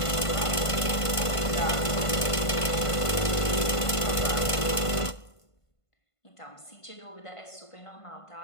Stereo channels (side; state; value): right; late; 1.5 ms